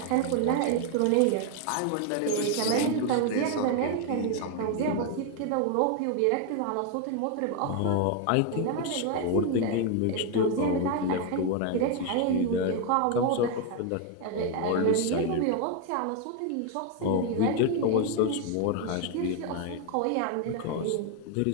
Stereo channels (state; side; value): different; both; correlation 0.01